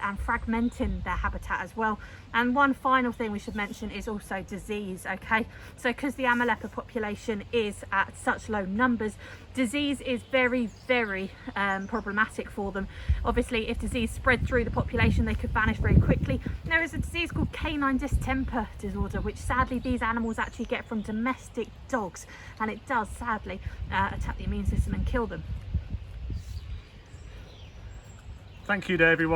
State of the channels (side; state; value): both; identical; correlation 1.00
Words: and fragmenting their habitat as well. And one final thing we should mention is also disease. Okay, so because the Amur leopard population is at such low numbers, disease is very problematic for them. Obviously, if disease spread through the population, they could vanish very quickly. There is a disease called canine distemper disorder, which sadly these animals actually get from domestic dogs, and it does sadly attack the immune system and kill them. Thank you to